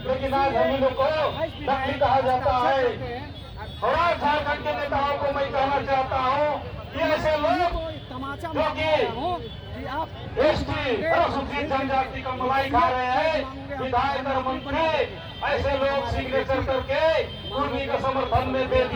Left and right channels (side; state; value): both; identical; correlation 1.00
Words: लेकिन आज हम लोग को नकली कहा जाता है। और आज झारखंड के नेताओं को मैं कहना चाहता हूँ कि ऐसे लोग जो कि एसटी अनुसूचित जनजाति का मलाई खा रहे हैं, विधायक और मंत्री ऐसे लोग सिग्नेचर करके कुर्मी के समर्थन में दे